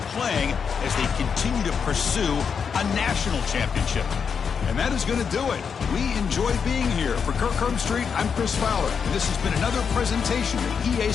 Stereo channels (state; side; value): quieter; right; 6.4 dB